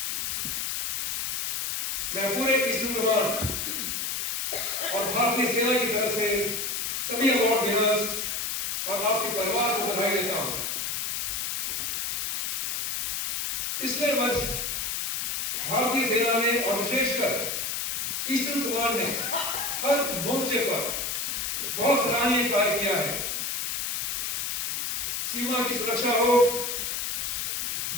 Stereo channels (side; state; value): left; noise; hiss, 1 dB below the sound